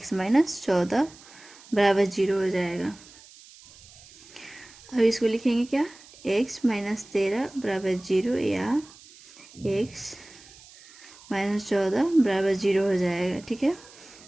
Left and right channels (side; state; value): right; noise; hiss, 22 dB below the sound